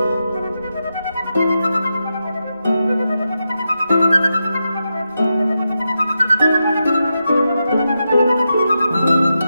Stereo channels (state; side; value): inverted; both; correlation -0.88